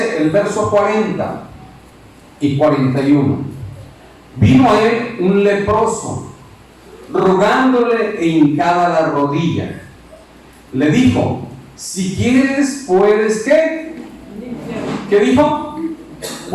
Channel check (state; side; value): identical; both; correlation 1.00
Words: el verso 40 y 41. Vino a él un leproso, rogándole e hincada la rodilla. Le dijo: si quieres, puedes, ¿qué? ¿Qué dijo?